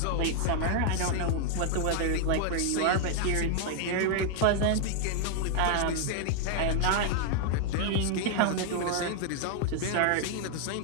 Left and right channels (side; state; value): both; different; correlation 0.00